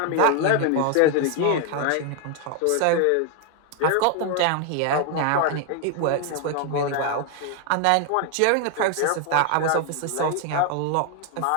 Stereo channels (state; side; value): different; both; correlation 0.01